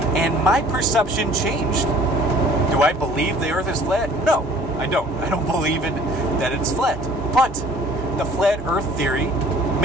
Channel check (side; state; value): left; noise; rumble, 20 dB below the sound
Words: and my perception changed. Do I believe the earth is flat? No, I don't. I don't believe that it's flat. But the flat earth theory